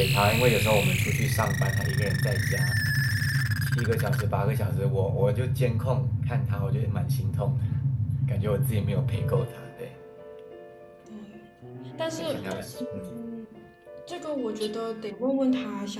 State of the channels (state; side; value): identical; both; correlation 1.00